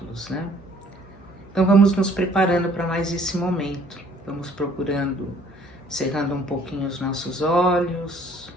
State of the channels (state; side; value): noise; left; hum, 24 dB below the sound